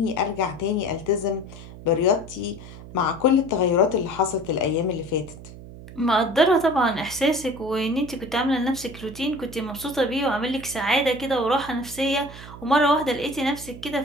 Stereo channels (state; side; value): noise; right; hum, 15 dB below the sound